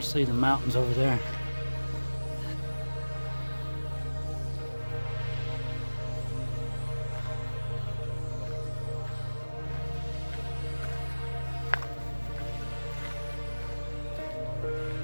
the mountains over there.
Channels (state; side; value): inverted; both; correlation -1.00